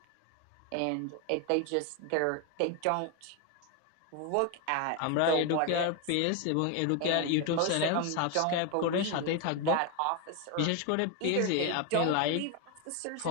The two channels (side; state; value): both; different; correlation 0.01